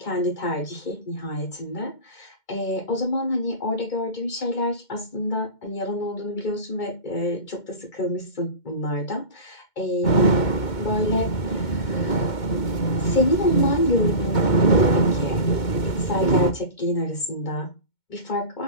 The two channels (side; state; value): right; late; 2.2 ms